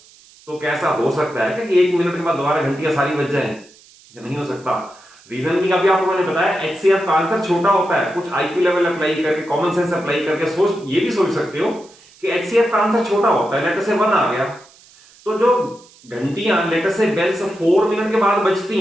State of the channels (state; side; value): noise; right; hiss, 26 dB below the sound